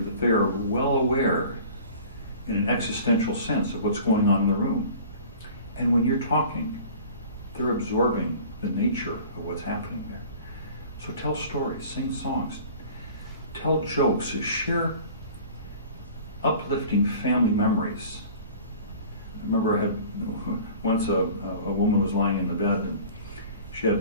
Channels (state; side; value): inverted; both; correlation -0.44